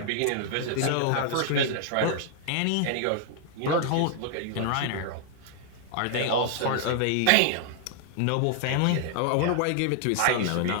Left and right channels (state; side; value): different; both; correlation 0.00